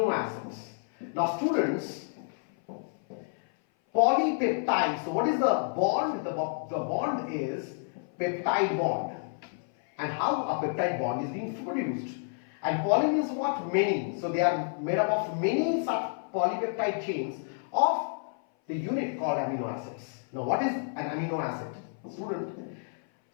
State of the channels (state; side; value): silent; right; 57 dB below the other